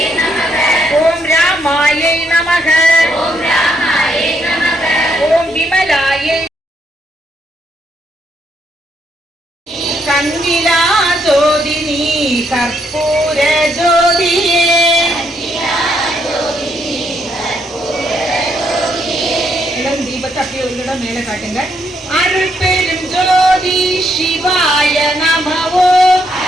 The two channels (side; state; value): both; normal; correlation 0.75